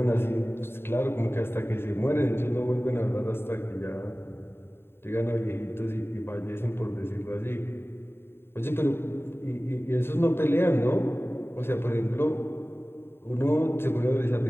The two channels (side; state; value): right; late; 0.11 ms